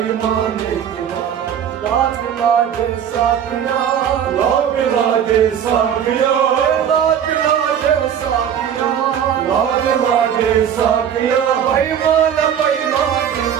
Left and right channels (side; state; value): left; quieter; 8.9 dB